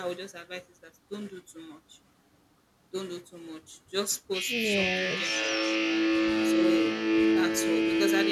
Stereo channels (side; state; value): both; identical; correlation 1.00